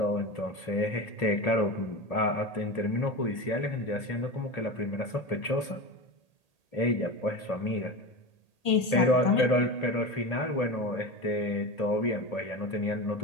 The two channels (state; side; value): late; right; 1.8 ms